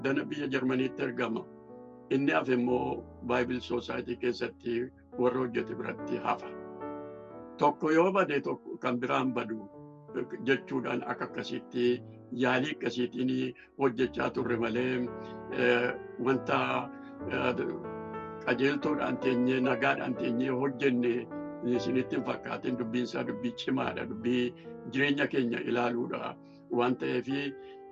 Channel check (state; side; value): identical; both; correlation 1.00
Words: biyya Jarmaniitti ergama. Inni hafe immoo Bible Society keessatti warra hojjete biratti hafa. Tokko yoo bade tokko kan biraan badu jechuudhaan akkasitti yaalii akkasiitiin hojjechaa turre malee wanta qajeeltoodhaan teenyee nagaadhaan teenyee hojjenne isinitti hin fakkaatin. Dubbiin isaa dubbii cimaadha. Dubbii jireenya keenya ilaaluudha waan ta'eef